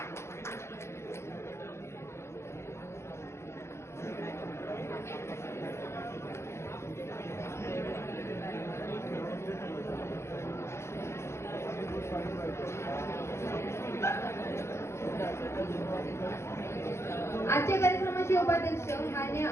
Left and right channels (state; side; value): late; right; 0.13 ms